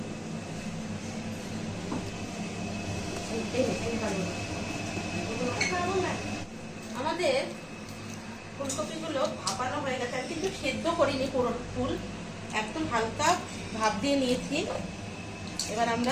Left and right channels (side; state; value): both; identical; correlation 1.00